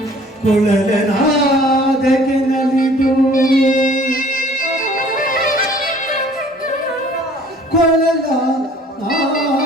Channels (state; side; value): normal; both; correlation 0.53